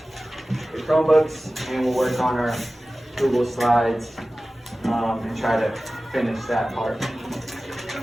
the Chromebooks and we'll work on our Google Slides and try to finish that part.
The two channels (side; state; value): both; normal; correlation 0.96